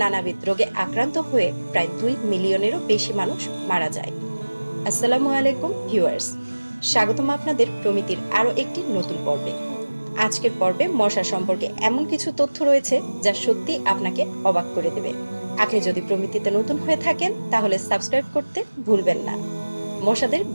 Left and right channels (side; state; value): both; inverted; correlation -1.00